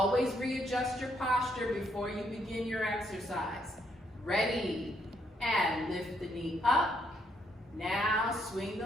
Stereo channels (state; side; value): normal; both; correlation 0.74